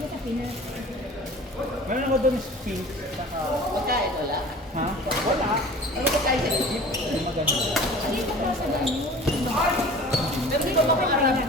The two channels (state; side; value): normal; both; correlation 0.42